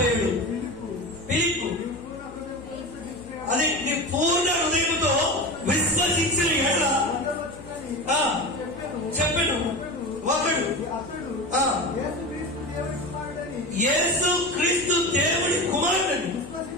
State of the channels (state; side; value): noise; left; hum, 20 dB below the sound